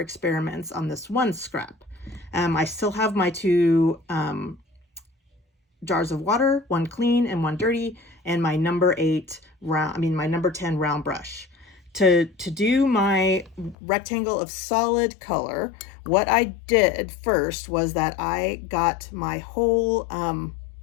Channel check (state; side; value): drops out; right; at 13.8 s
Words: on this one scrap. I still have my 2 jars of water, one clean and one dirty, and my number 10 round brush. To do my rectangle of solid color, what I did first was that I got my whole